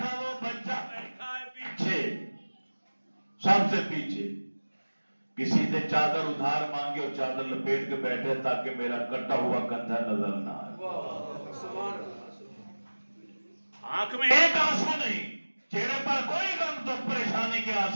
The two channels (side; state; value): both; inverted; correlation -1.00